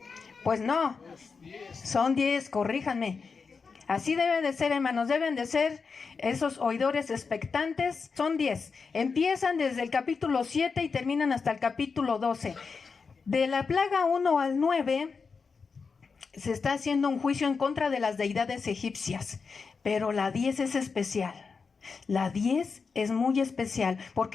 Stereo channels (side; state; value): right; quieter; 5.1 dB